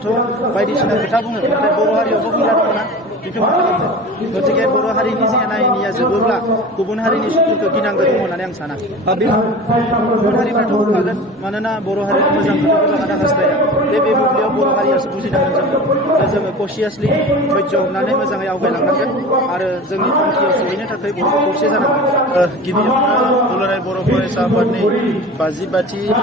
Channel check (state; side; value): normal; both; correlation 0.35